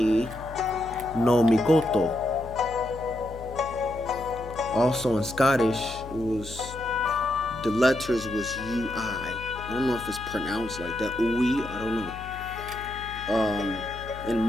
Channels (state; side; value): noise; left; hum, 13 dB below the sound